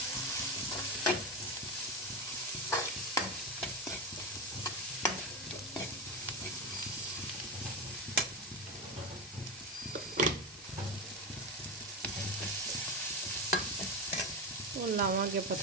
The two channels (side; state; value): both; normal; correlation 0.18